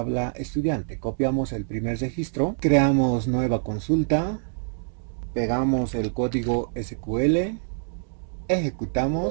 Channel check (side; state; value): left; silent; digital silence